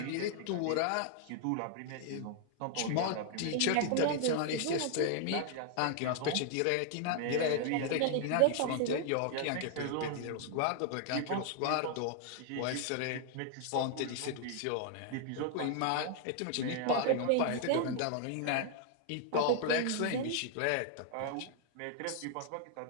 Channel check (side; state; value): both; different; correlation 0.00